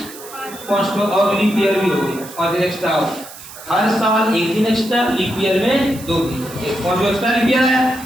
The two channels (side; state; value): right; noise; hiss, 16 dB below the sound